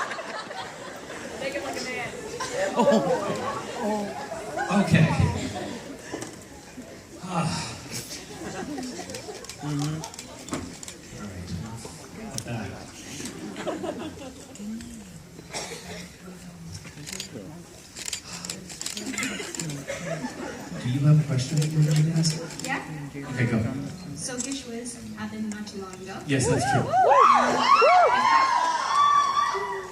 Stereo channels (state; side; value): identical; both; correlation 1.00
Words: Make it like a man. Okay. All right, enough of that. Do you have a question that you're going to ask? Yeah. Okay, go. So Gishwas happened not too long ago. Yes, that's true.